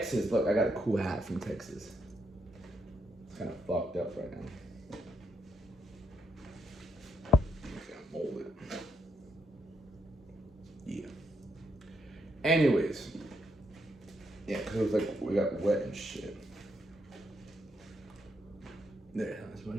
Look, I got a cool hat from Texas. It's kind of fucked up right now. I'm just gonna mold it. Yeah. Anyways. Yeah, because it was like we got wet and shit. There, that's much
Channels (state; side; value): normal; both; correlation 0.77